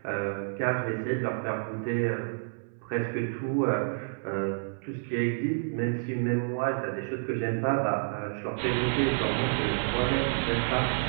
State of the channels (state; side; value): silent; left; 58 dB below the other